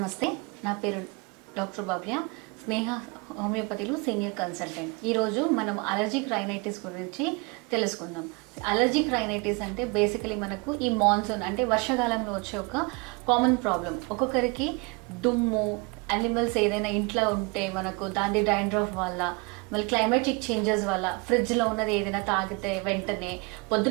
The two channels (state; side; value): quieter; left; 29.4 dB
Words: నా పేరు డాక్టర్ భవ్య, స్నేహ హోమియోపతిలో సీనియర్ కన్సల్టెంట్. ఈరోజు మనం అలర్జిక్ రైనైటిస్ గురించి తెలుసుకుందాం. అలర్జిక్ రైనైటిస్ అంటే బేసికలీ మనకు ఈ మాన్సూన్ అంటే వర్షాకాలంలో వచ్చే ఒక కామన్ ప్రాబ్లం. ఒక్కొక్కరికి దుమ్ము, యానిమల్స్ ఏదైనా ఇంట్లో ఉంటే మనకు దాని డాండ్రఫ్ వల్ల, మళ్ళీ క్లైమాటిక్ చేంజెస్ వల్ల ఫ్రిడ్జ్లో ఉన్నది ఏదైనా తాగితే వెంటనే